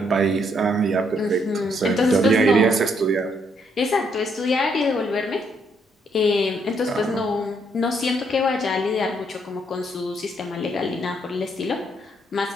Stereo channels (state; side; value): normal; both; correlation 0.72